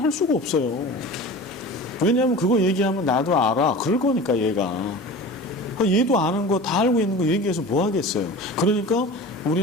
할 수가 없어요. 왜냐하면 그거 얘기하면 나도 알아. 그럴 거니까 얘가. 얘도 아는 거 다 알고 있는 거 얘기해서 뭐 하겠어요. 그러니까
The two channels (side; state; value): both; normal; correlation 0.35